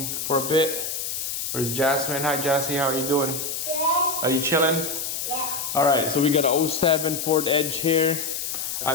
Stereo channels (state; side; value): noise; left; hiss, 4 dB below the sound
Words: for a bit. Where's Jasmine? Hi Jassy, how are you doing? Good. Are you chilling? Yeah. Alright, so we got a 07 Ford Edge here.